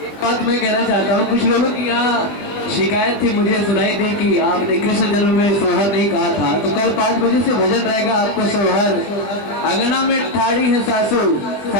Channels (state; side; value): late; right; 20 ms